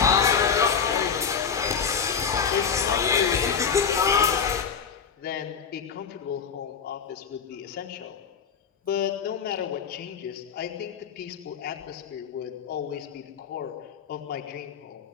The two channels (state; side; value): quieter; right; 6.7 dB